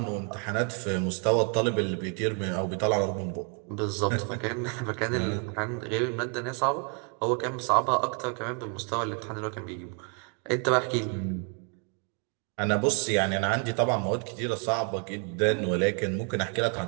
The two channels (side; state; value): left; quieter; 37.3 dB